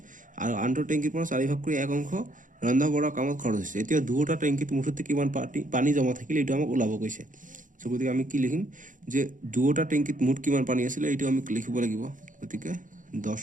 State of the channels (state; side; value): late; left; 0.38 ms